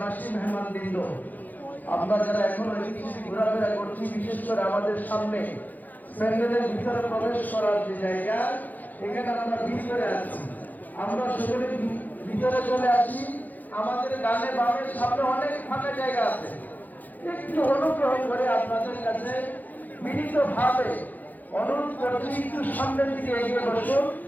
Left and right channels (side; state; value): right; late; 0.083 ms